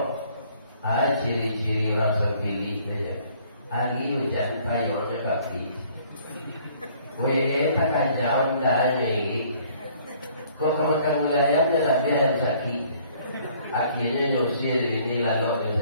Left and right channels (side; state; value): both; inverted; correlation -0.59